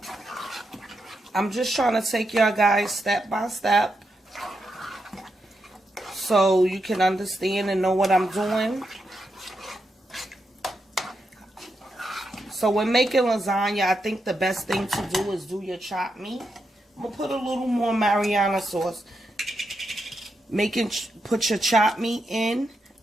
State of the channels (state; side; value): normal; both; correlation 0.84